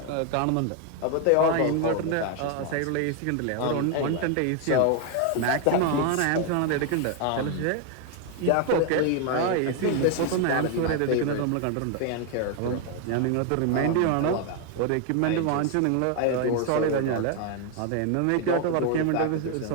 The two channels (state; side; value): different; both; correlation 0.01